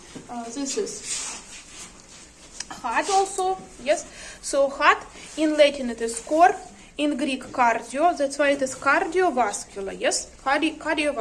This is heart also, yes. So heart, in Latin it is cor, in Greek cardio, that's why it is cardiovascular, yes.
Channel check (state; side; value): identical; both; correlation 1.00